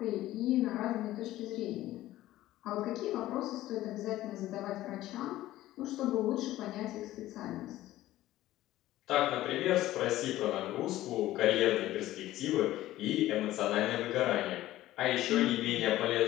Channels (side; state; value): right; quieter; 15.2 dB